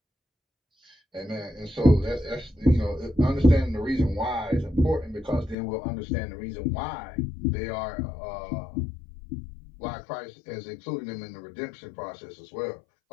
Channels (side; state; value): right; drops out; at 5.6 s